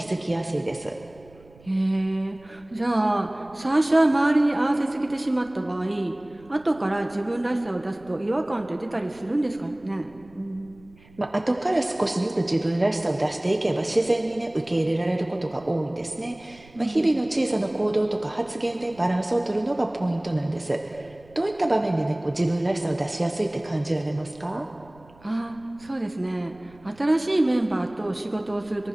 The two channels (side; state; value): right; noise; rumble, 25 dB below the sound